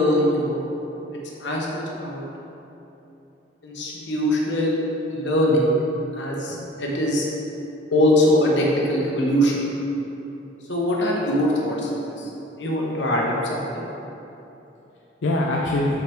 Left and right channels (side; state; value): both; normal; correlation 0.44